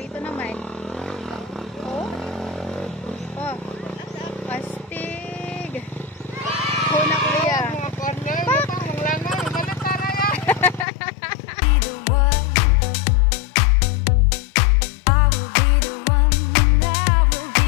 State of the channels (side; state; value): right; drops out; at 10.9 s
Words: naman. Oh. Oh. Astig. Oh na kuya. Pak!